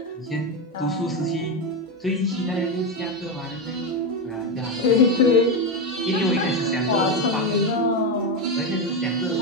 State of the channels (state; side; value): normal; both; correlation 0.11